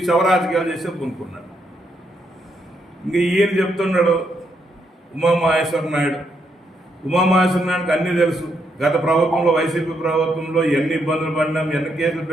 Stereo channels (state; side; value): normal; both; correlation 0.78